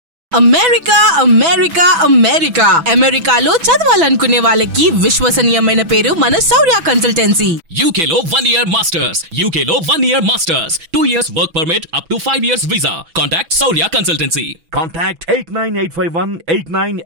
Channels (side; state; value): left; late; 6.1 ms